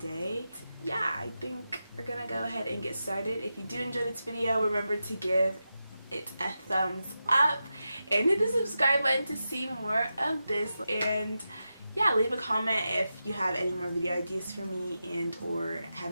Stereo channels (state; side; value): inverted; both; correlation -0.90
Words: Yeah, I think we're gonna go ahead and get started. If you do enjoy this video, remember to give it a thumbs up and hit the subscribe button to see more of this. And yeah, leave a comment if you have any more video ideas for me and or